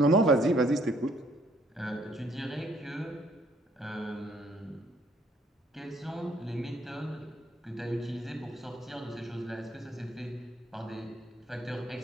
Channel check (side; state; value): both; normal; correlation 0.65